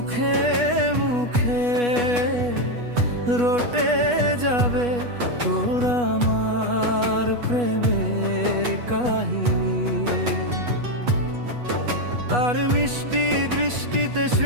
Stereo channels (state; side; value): late; left; 8.2 ms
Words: মুখে রটে যাবে তোর আমার প্রেমের কাহিনী। তার মিষ্টি দৃষ্টিতে